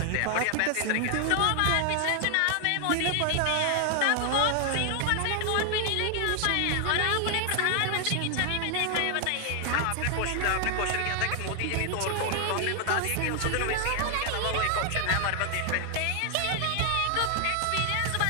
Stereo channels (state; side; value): different; both; correlation 0.00